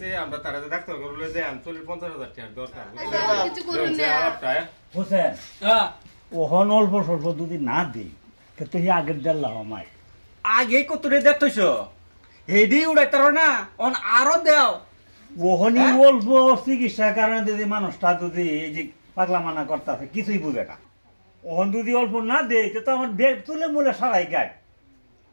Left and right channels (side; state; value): both; inverted; correlation -1.00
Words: আমরা তারা ডাক্তার করলে যে 50,000 টাকা দরকার কিছু করুন না হোসেন হ্যাঁ ওহন অল্প স্বল্প যদি না দিই তো হি আগের দেল্লা আমায় আগে কতরে দেখতেছো হেডি উড়াইতার না অন আরো দেও ওহনি অল্প চিকিৎসার কারণে যদি মানুষটা যদি এই যে পাগলা মানা করতেছে কিছুই বুঝে না ওহন যদি অল্প না দেয় তো আমার বেগ তুলে মুলে সারাই গায়